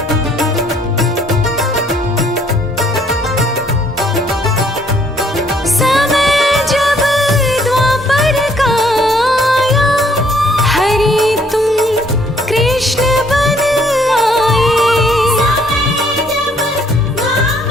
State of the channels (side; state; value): both; normal; correlation 0.64